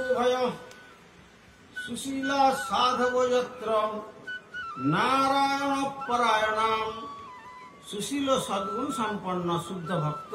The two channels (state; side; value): identical; both; correlation 1.00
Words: ভয় সুশীল সাধব যত্র নারায়ণ পরায়ণাম। সুশীল সদ্গুণ সম্পন্ন শুদ্ধ ভক্ত